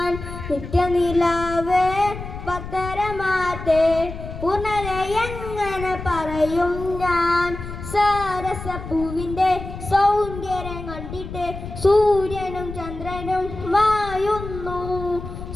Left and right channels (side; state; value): left; noise; rumble, 10 dB below the sound